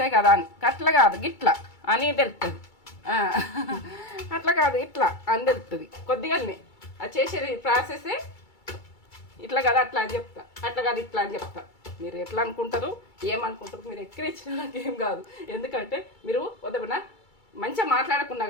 కదా అని. అట్లా కాదు, గిట్ల అని తెలుస్తుంది. అట్లా కాదు, ఇట్లా అని తెలుస్తుంది. కొద్దిగానే అది చేసేది ప్రాసెసే ఇట్లా కదా అట్లా అని చెప్తా, అట్లా కాదు ఇట్లా అని చెప్తా. మీరు ఎట్లా అనుకుంటారు, ఏమనుకుంటారు, మీరు ఎక్కిరిచ్చినా నాకేం కాదు. ఎందుకంటే మీరు వద్దమన్నా మంచిగా మాట్లాడకున్నా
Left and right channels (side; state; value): right; late; 2.3 ms